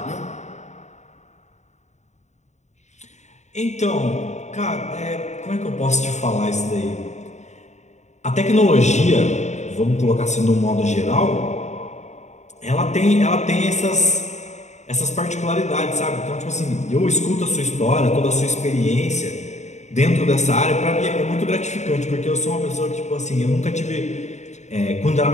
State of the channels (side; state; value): right; late; 0.34 ms